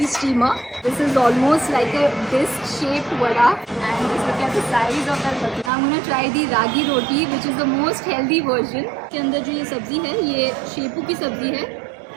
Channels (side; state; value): left; drops out; at 5.7 s